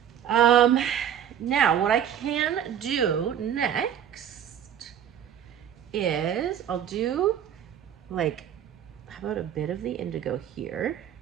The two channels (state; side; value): quieter; left; 9.4 dB